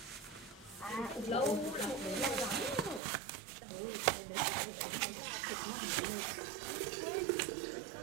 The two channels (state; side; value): drops out; left; at 3.0 s